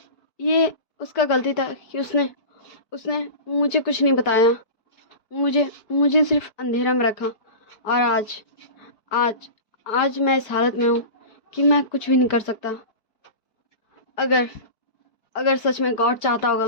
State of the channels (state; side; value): late; right; 4.6 ms